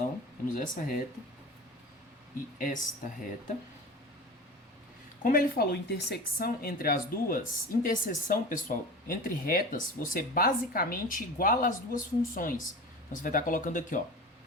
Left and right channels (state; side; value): normal; both; correlation 0.33